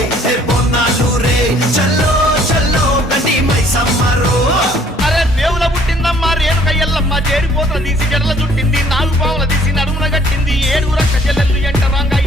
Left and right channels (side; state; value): both; normal; correlation 0.59